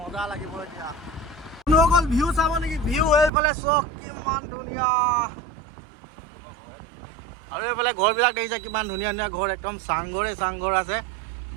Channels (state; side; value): drops out; left; at 3.3 s